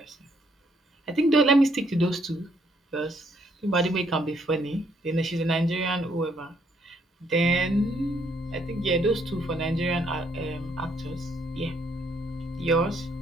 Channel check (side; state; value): both; normal; correlation 0.70